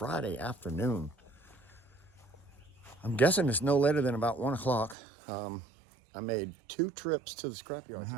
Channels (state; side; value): drops out; left; at 5.0 s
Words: afternoon. I'm guessing it's no later than about 1 o'clock. I made 2 trips to the scrapyard. I